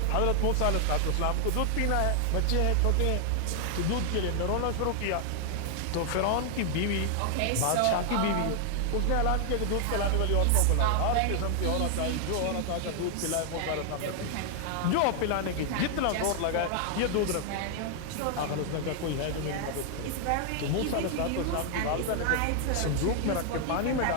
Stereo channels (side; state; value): both; different; correlation 0.00